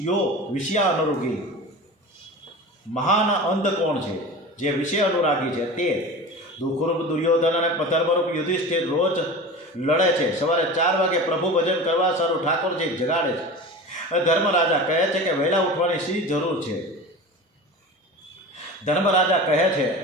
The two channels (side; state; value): both; normal; correlation 0.32